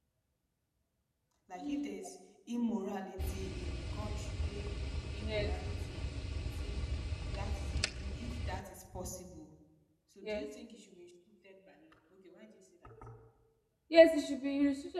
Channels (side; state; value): both; identical; correlation 1.00